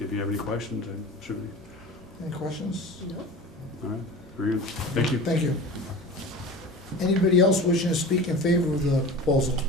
you have any questions, I'm certainly. Any questions? No. All right, very good. Thank you. Thank you. Anybody else wishing to speak in favor of the proposal?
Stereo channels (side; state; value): both; normal; correlation 0.36